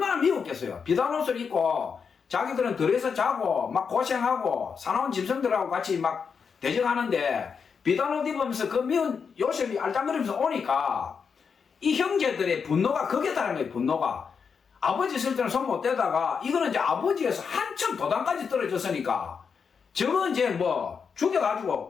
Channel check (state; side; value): quieter; right; 6.1 dB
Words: 미웠겠어요. 비단옷을 입고 자기들은 들에서 자고 막 고생하고 사나운 짐승들하고 같이 막 대적하는데 비단옷 입으면서 그 미운 요셉이 알짱거리면서 오니까 이 형제들의 분노가 거기에 달한 거예요. 분노가 아버지 있을 때는 손 못 대다가 이거는 이제 아버지에서 한참 도단까지 떨어졌으니까 저거 이제 뭐